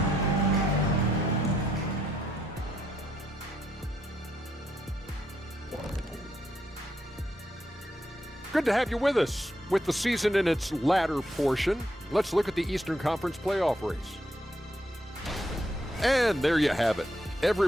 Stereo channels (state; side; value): normal; both; correlation 0.77